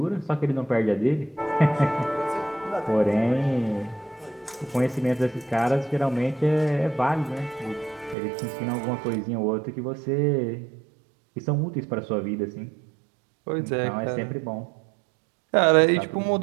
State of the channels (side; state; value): left; drops out; at 8.2 s